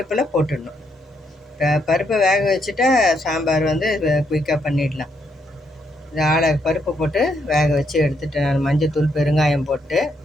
போட்டுடணும். பருப்பை வேக வச்சுட்டா சாம்பார் வந்து குயிக்காக பண்ணிடலாம். இது பருப்பு போட்டு வேக வச்சு எடுத்துட்டேன் நான். மஞ்சத்தூள், பெருங்காயம் போட்டு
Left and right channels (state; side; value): normal; both; correlation 0.76